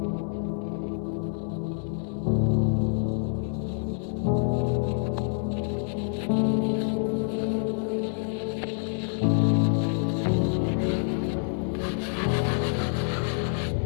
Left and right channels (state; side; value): silent; right; 60 dB below the other